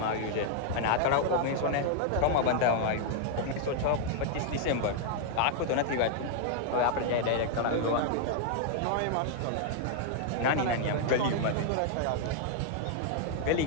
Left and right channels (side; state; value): both; different; correlation 0.00